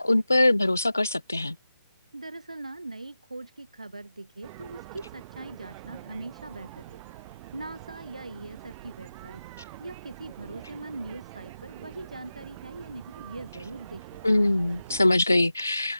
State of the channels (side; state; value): both; inverted; correlation -0.94